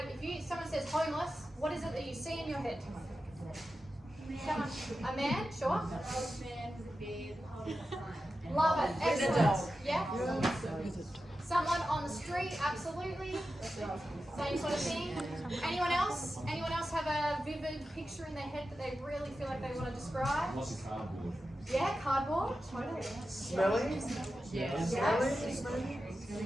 If someone says homeless, what is it that you see in your head? Someone, a man, sure. Old man with a beard holding a sign. Love it. Excellent. Yeah. Someone on the street, absolutely. Same sort of thing. Anyone else? Anyone else have a vivid picture in their head that they really feel like they want to describe? What's a cardboard? Yeah, cardboard. Totally. Smelly? Yes. Smelly?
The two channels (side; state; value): both; normal; correlation 0.92